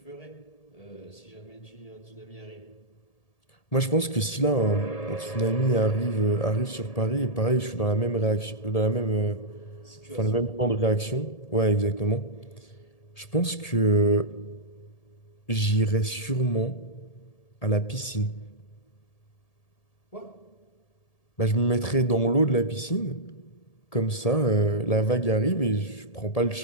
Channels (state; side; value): late; right; 1.8 ms